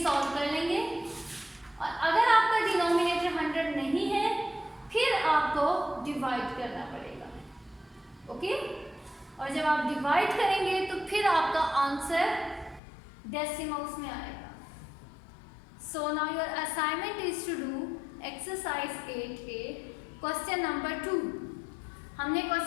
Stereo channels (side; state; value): right; drops out; at 12.8 s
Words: सॉल्व कर लेंगे, और अगर आपका डिनोमिनेटर 100 नहीं है फिर आपको डिवाइड करना पड़ेगा। ओके, और जब आप डिवाइड करेंगे तो फिर आपका आंसर डेसिमल्स में आएगा। So now your assignment is to do exercise 8A question number 2। हमने